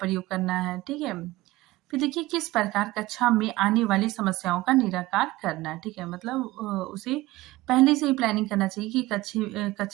करना है। ठीक है, फिर देखिए किस प्रकार कक्षा में आने वाली समस्याओं का निराकार करना है। ठीक है, मतलब उसे पहले से ही प्लानिंग करना चाहिए कि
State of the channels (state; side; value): quieter; left; 18.7 dB